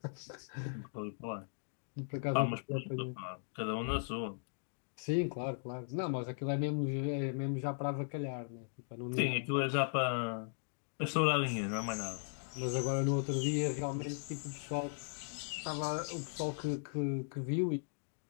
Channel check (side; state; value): right; silent; digital silence